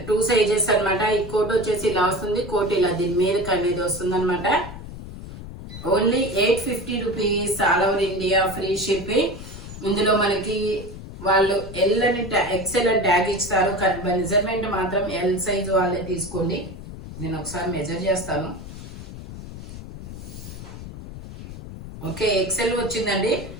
2 సైజెస్ అన్నమాట. ఈ కోట్ వచ్చేసి ఇలా వస్తుంది. కోట్ ఇలా దీని మీదకి అనేది వస్తుంది అనమాట. Only 850 rupees, all over India free shipping. ఇందులో మనకి వాళ్ళు ఎల్ అని ఎక్స్ఎల్ అని ట్యాగ్ ఇస్తారు. కానీ మెజర్మెంట్ మాత్రం ఎల్ సైజు వాళ్ళే తీసుకోండి. నేను ఒకసారి మెజర్ చేస్తాను. ఓకే, ఎక్స్ఎల్ వచ్చిందండి.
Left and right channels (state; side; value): noise; left; rumble, 12 dB below the sound